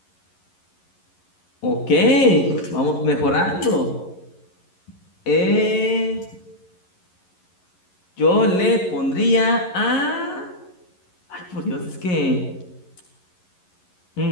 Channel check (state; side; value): late; right; 11 ms